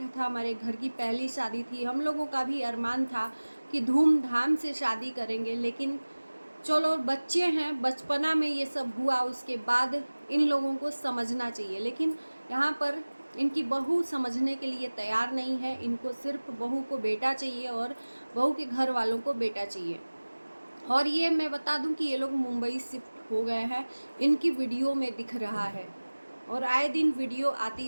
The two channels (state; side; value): inverted; both; correlation -1.00